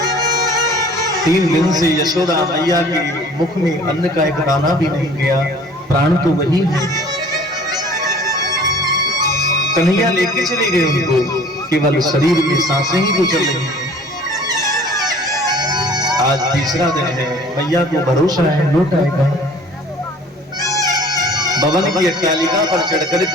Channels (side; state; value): both; normal; correlation 0.50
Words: 3 दिन से यशोदा मैया के मुख में अन्न का एक दाना भी नहीं गया। प्राण तो वही है, कन्हैया लेके चले गए उनको, केवल शरीर में सांसें ही तो चल रही हैं। आज तीसरा दिन है, मैया को भरोसा है लौट आएगा। भवन की अट्टालिका पर चढ़